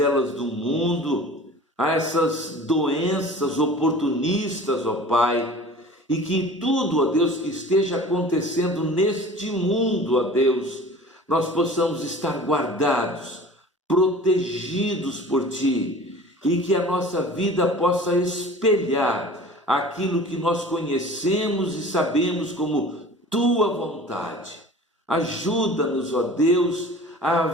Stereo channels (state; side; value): normal; both; correlation 0.42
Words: do mundo, a essas doenças oportunistas, ó Pai, e que tudo, ó Deus, que esteja acontecendo neste mundo, ó Deus, nós possamos estar guardados, protegidos por Ti, e que a nossa vida possa espelhar aquilo que nós conhecemos e sabemos como Tua vontade. Ajuda-nos, ó Deus, a